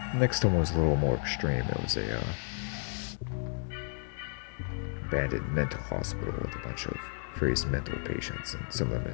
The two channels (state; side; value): silent; right; 56 dB below the other